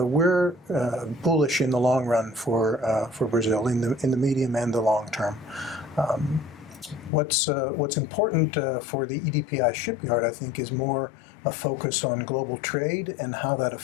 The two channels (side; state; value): right; drops out; at 7.1 s